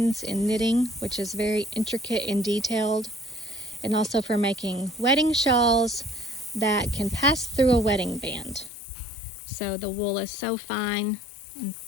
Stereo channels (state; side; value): drops out; right; at 8.7 s